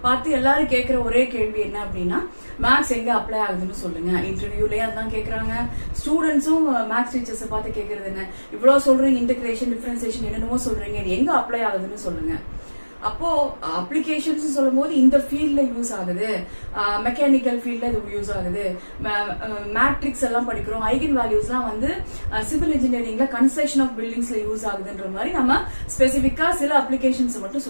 பார்த்து எல்லாரும் கேட்கிற ஒரே கேள்வி என்ன அப்படின்னா, மேக்ஸ் எங்க அப்ளை ஆகுதுன்னு சொல்லுங்க. இன்டர்வியூலயே அதான் கேக்குறாங்க. ஸ்டூடெண்ட்ஸும் மேக்ஸ் டீச்சர்ஸை பார்த்து கேட்கறது என்ன, இவ்வளவு சொல்றீங்க, இன்டகிரேஷன் டிஃபரன்சியேஷன் என்னென்னமோ சொல்றீங்க, இது எங்க அப்ளை ஆகுதுன்னு சொல்லுங்க. அப்போ அப்ளிகேஷன்ஸ் சொல்லும் போது இந்த ஃபீல்ட்ல யூஸ் ஆகுது, மெக்கானிக்கல் ஃபீல்ட்ல இது யூஸ் ஆகுது, மேட்ரிக்ஸ் எல்லாம் படிக்கிறோம், ஐகன் வேல்யூஸ்லாம் சிவில் இன்ஜினியரிங்ல கன்ஸ்ட்ரக்ஷன் ஆஃப் பில்டிங்ஸ்ல யூஸ் ஆகுதுன்ற மாதிரி நம்ம ஸ்பெசிபிக்கா சில அப்ளிகேஷன்ஸ் மட்டும்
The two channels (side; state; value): both; inverted; correlation -1.00